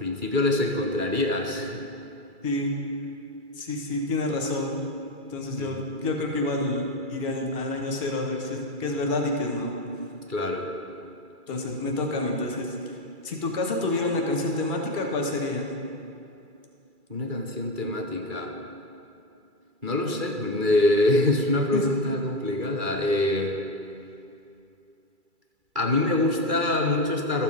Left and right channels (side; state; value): left; late; 2.3 ms